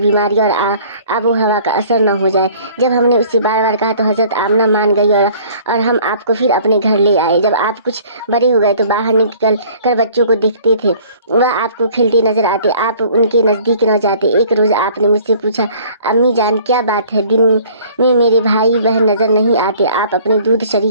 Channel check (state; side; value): inverted; both; correlation -0.53